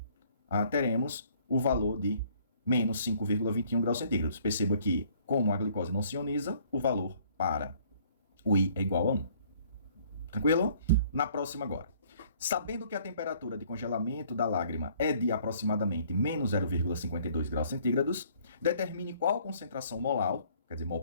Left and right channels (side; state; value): both; inverted; correlation -0.60